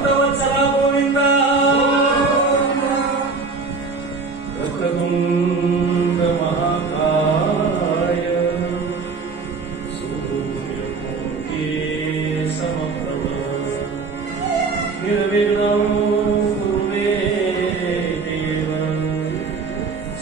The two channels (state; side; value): quieter; left; 4.4 dB